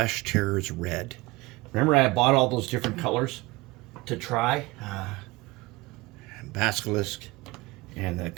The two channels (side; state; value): left; quieter; 21.9 dB